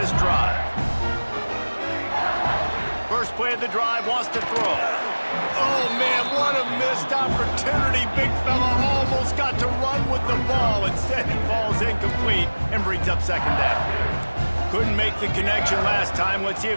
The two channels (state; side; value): inverted; both; correlation -1.00